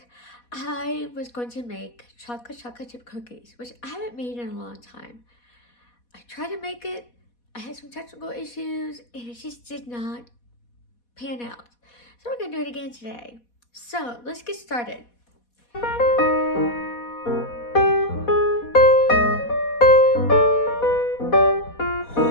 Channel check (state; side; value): late; right; 4.2 ms